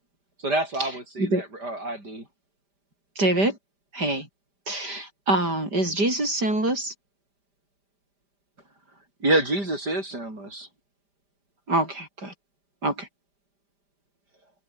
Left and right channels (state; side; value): late; left; 5.0 ms